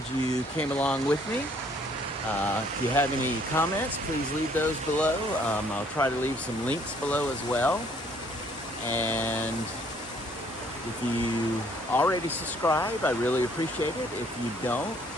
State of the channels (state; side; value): normal; both; correlation 0.63